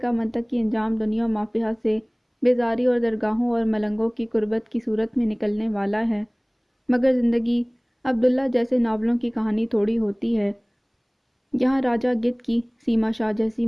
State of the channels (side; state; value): both; identical; correlation 1.00